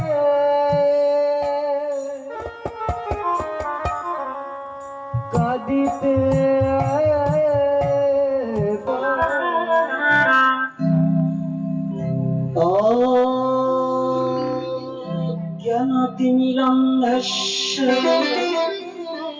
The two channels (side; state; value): both; identical; correlation 1.00